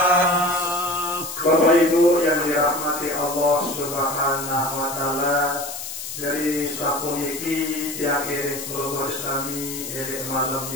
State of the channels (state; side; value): noise; left; hiss, 8 dB below the sound